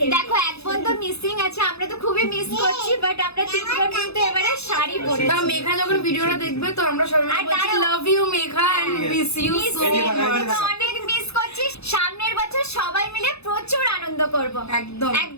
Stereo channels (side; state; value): right; late; 0.79 ms